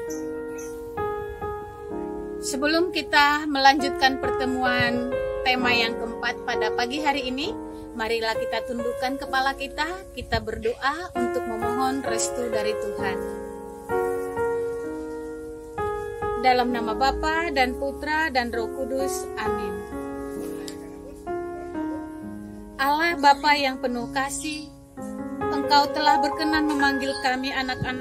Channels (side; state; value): both; identical; correlation 1.00